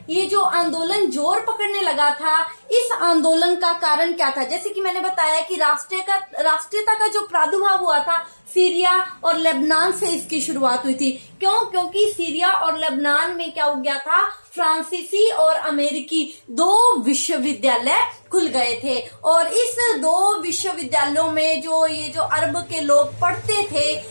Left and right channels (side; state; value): both; inverted; correlation -1.00